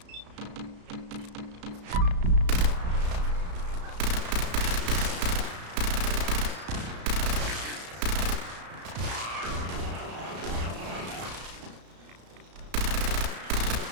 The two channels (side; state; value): left; late; 34 ms